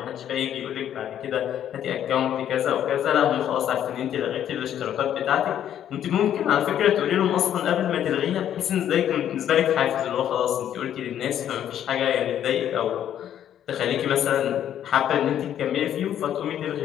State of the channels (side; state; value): right; quieter; 10.4 dB